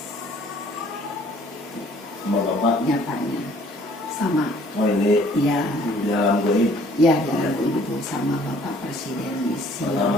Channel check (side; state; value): both; normal; correlation 0.57